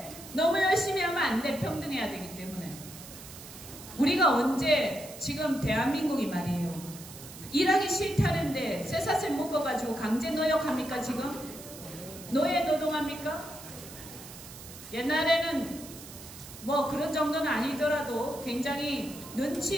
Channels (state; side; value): noise; right; hiss, 15 dB below the sound